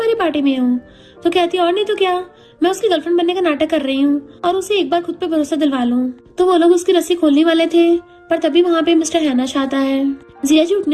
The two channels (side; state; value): both; identical; correlation 1.00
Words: पार्टी में हो तो कहती है और नहीं तो क्या, मैं उसकी गर्लफ्रेंड बनने का नाटक कर रही हूँ और उसे एक बार खुद पे भरोसा दिलवा लूं। तो वो लोग उसकी रस्सी खोलने वाले थे पर तभी वहाँ पे मिस्टर हैन आ जाता है। जिया जी